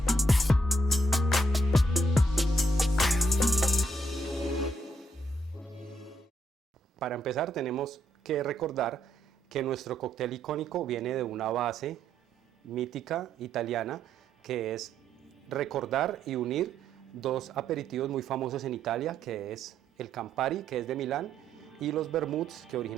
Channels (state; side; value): normal; both; correlation 0.75